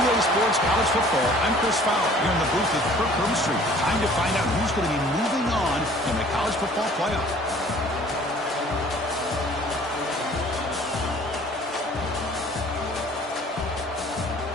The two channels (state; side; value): normal; both; correlation 0.52